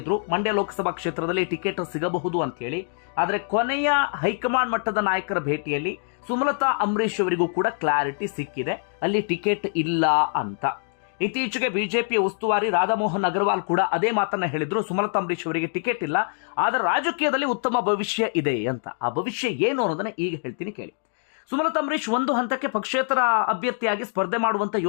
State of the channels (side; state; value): right; silent; 62 dB below the other